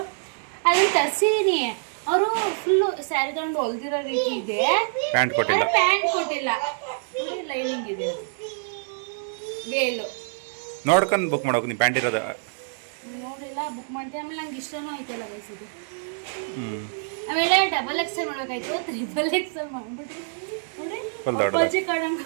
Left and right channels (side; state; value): left; silent; digital silence